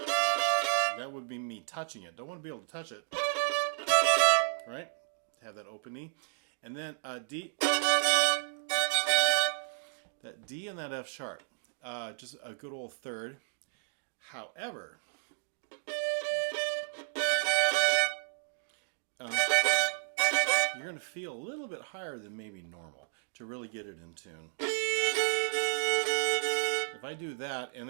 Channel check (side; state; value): left; silent; digital silence